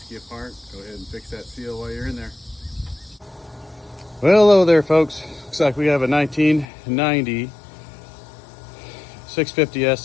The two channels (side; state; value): right; drops out; at 6.7 s